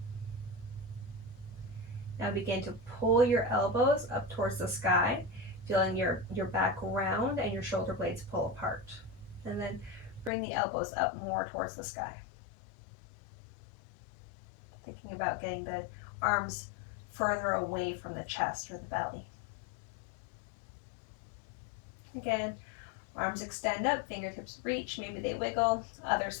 Now begin to pull your elbows up towards the sky, feeling your back round and your shoulder blades pull apart. And then bring the elbows up more towards the sky. Thinking about getting the arms further away from the chest or the belly. Again, arms extend up, fingertips reach, maybe they wiggle. Other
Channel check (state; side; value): drops out; right; at 10.3 s